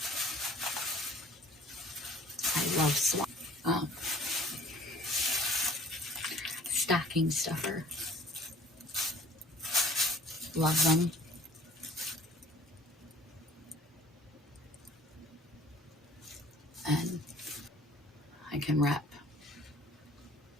I love stocking stuffer. Love them. And I can wrap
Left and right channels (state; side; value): normal; both; correlation 0.51